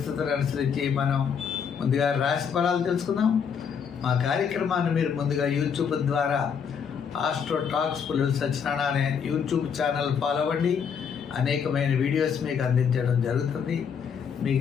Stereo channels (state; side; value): quieter; right; 6.9 dB